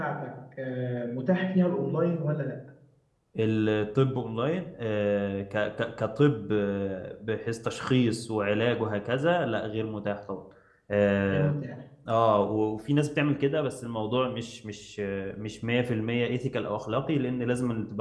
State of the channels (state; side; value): identical; both; correlation 1.00